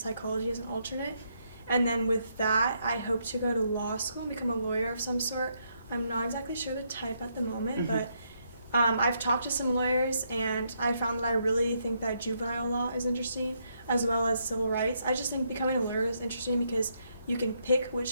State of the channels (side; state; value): both; inverted; correlation -0.76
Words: as an alternate. And then with that, I hope to go to law school and become a lawyer of some sort. I'm not exactly sure the type at the moment, but I've talked to some lawyers, and I found that I really think that juvenile law is interesting, as well as civil rights. I just think becoming a lawyer is interesting because you can pick